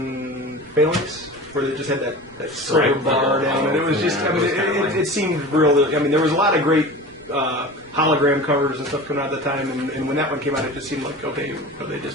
Phalanx? Where they just had that silver Right. bar down. And it was just, Yeah, I mean, it was kinda lame. it seemed real. I mean, there was a lot of great hologram covers and stuff coming out at the time. And when that one came out, it just seemed like, okay, they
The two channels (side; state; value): right; noise; rumble, 26 dB below the sound